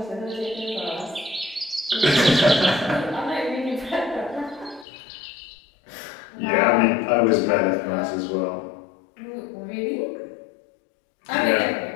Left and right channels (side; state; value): right; drops out; at 4.9 s